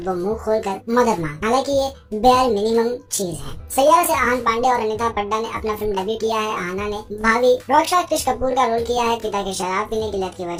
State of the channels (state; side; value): identical; both; correlation 1.00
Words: वो मुंह खोलकर मदद मांग, हालांकि ये बेयर मिनिमम चीज है। सैयारा से आहान पांडे और अनीता पड्डा ने अपना फिल्म डेब्यू किया है। आहाना ने भाभी रॉकस्टार क्रिश कपूर का रोल किया है। पिता के शराब पीने की लत की